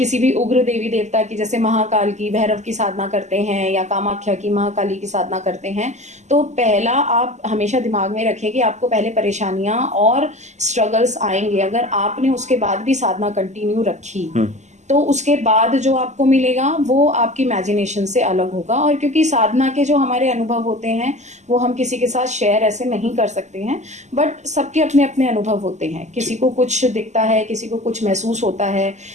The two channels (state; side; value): late; left; 0.34 ms